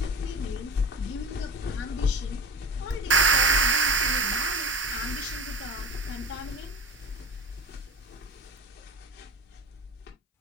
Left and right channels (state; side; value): normal; both; correlation 0.33